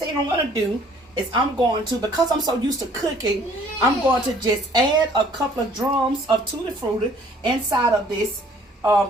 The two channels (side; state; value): both; normal; correlation 0.57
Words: I'm going to do is I'm going to, because I'm so used to cooking, I'm going to just add a couple of drums of Tooty Fruity inside of this